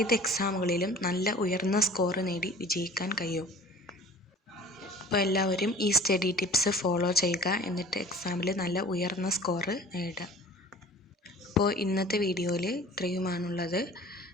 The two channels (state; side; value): normal; both; correlation 0.45